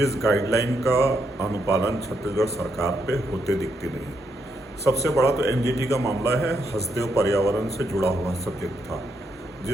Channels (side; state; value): both; normal; correlation 0.78